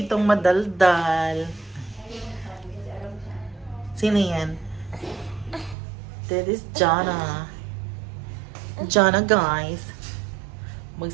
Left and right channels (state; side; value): drops out; left; at 5.8 s